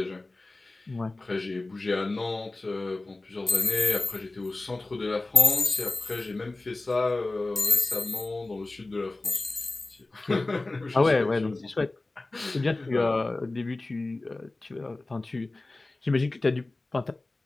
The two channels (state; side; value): quieter; right; 3.0 dB